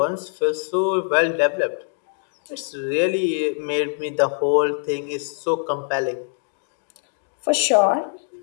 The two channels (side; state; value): right; silent; digital silence